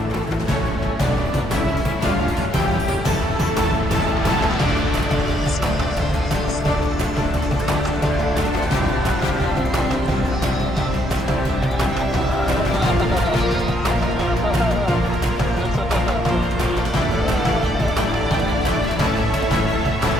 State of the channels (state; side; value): normal; both; correlation 0.72